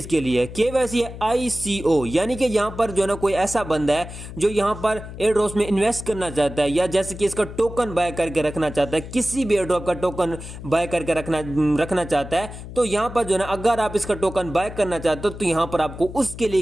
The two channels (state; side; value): noise; left; hum, 12 dB below the sound